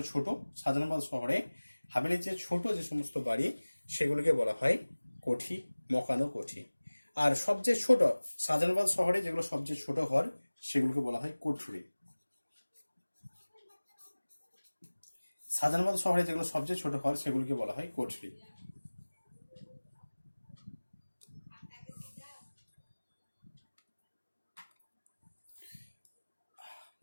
ছোট শাহজাহানাবাদ শহরে, হাভেলির চেয়ে ছোট যে সমস্ত বাড়ি সেগুলোকে বলা হয় কোঠি, মকান ও কোঠি। আর সবচেয়ে ছোট শাহজাহানাবাদ শহরে যেগুলো সবচেয়ে ছোট ঘর, সেগুলোকে বলা হয় কোঠরি। শাহজাহানাবাদ শহরে যেগুলো সবচেয়ে ছোট ঘর, সেগুলোকে বলা হয় কোঠরি।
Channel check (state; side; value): inverted; both; correlation -1.00